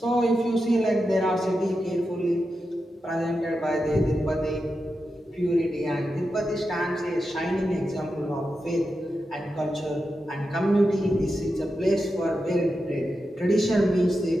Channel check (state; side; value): normal; both; correlation 0.89